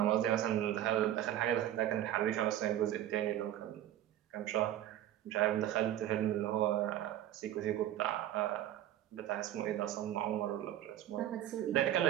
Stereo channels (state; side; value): quieter; left; 12.4 dB